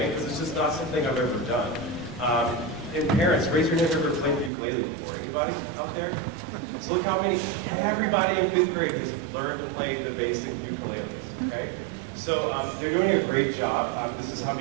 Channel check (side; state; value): left; drops out; at 4.5 s